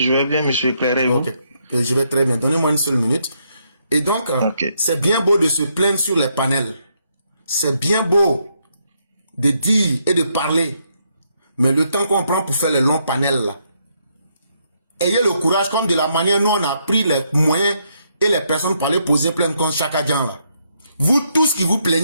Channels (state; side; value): inverted; both; correlation -0.76